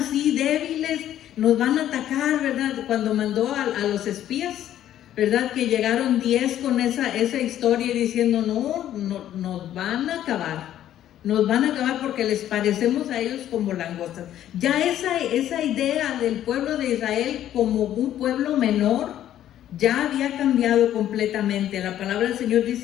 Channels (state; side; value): quieter; right; 11.7 dB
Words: débiles, nos van a atacar, ¿verdad? Cuando mandó a los espías, ¿verdad? Que llegaron 10 con esa historia y diciendo, no, nos van a acabar. Nos van a acabar porque les parecemos a ellos como langostas. Ya esa idea del pueblo de Israel como un pueblo menor ya había cambiado completamente. La palabra del Señor